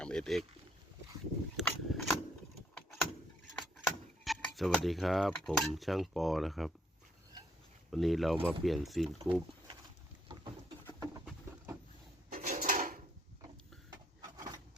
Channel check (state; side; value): normal; both; correlation 0.70